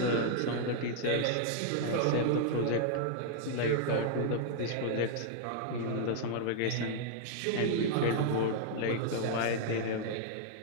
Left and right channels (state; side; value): different; both; correlation -0.01